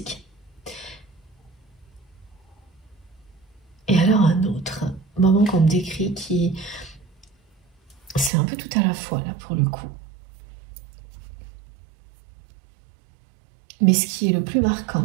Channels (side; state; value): left; drops out; at 8.3 s